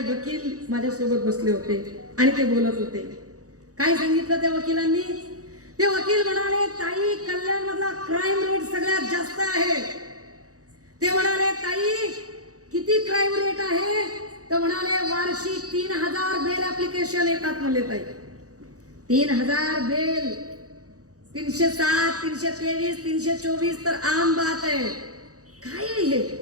माझ्यासोबत बसले होते आणि ते बोलत होते. काय सांगितलं त्या वकिलांनी? ते वकील म्हणाले ताई कल्याण मधला क्राईम रेट सगळ्यात जास्त आहे. ते म्हणाले ताई किती क्राईम रेट आहे? तर म्हणाले वार्षिक 3000 बेल ऍप्लिकेशन येतात म्हणले ताई. 3000 बेल, 307, 323, 324 तर आम बात आहे. काय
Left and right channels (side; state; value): left; late; 0.66 ms